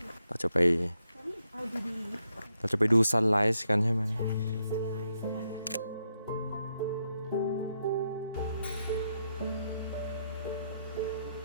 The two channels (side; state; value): both; inverted; correlation -0.80